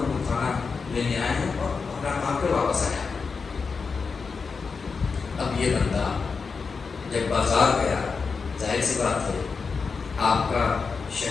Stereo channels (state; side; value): quieter; right; 5.0 dB